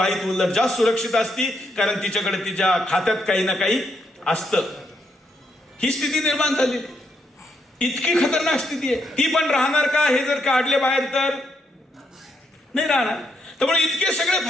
उलट जास्त सुरक्षित असती, कारण तिच्याकडे तिच्या खात्यात काही ना काही असतं. ही स्थिती निर्माण झाली. इतकी खतरनाक स्थिती आहे. ती पण राहणार का हे जर काढले बाहेर तर नाही राहणार. त्यामुळे इतके सगळे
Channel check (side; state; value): both; normal; correlation 0.77